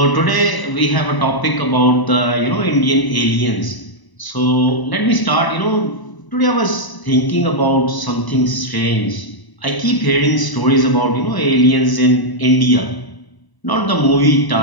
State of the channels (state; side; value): late; right; 1.0 ms